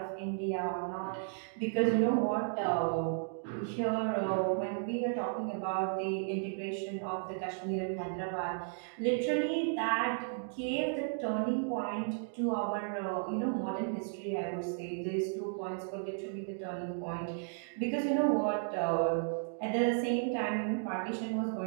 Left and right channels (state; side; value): silent; left; digital silence